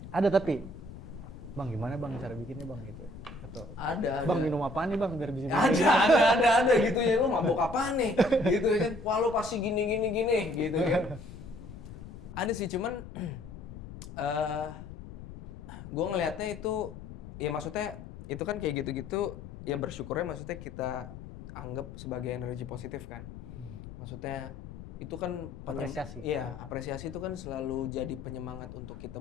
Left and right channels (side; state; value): left; noise; rumble, 13 dB below the sound